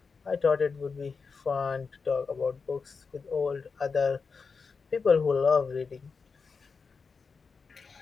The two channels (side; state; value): right; quieter; 5.0 dB